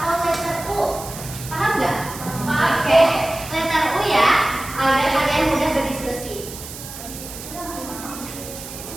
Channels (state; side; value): noise; right; hiss, 12 dB below the sound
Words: letter U. Paham nggak? Oke. Letter U ya, agar kalian mudah berdiskusi.